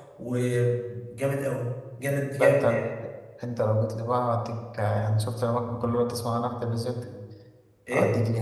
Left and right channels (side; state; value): both; identical; correlation 1.00